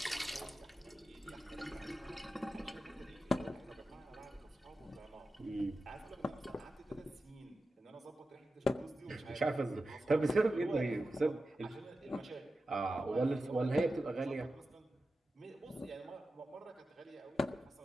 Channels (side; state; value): both; normal; correlation 0.92